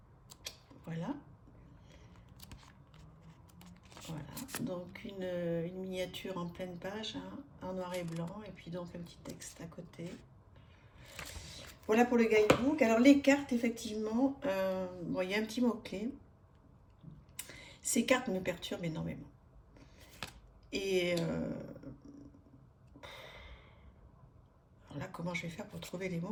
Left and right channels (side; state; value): both; identical; correlation 1.00